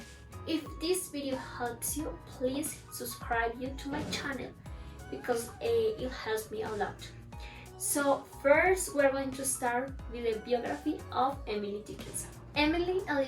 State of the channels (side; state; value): both; identical; correlation 1.00